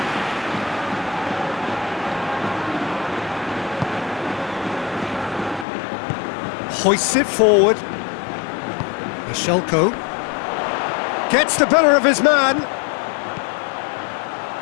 Hoists it forward. Bashelko gets the better of his man.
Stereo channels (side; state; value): right; drops out; at 5.7 s